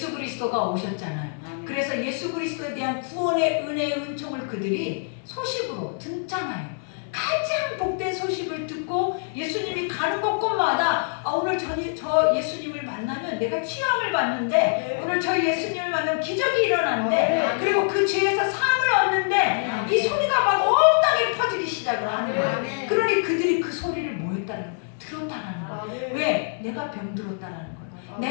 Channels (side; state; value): right; silent; digital silence